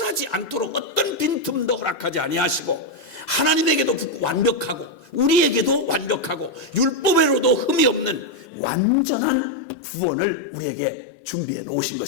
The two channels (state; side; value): drops out; right; at 8.5 s